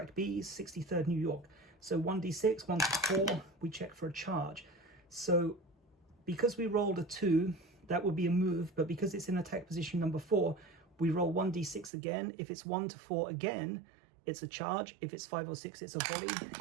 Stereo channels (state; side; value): drops out; left; at 11.9 s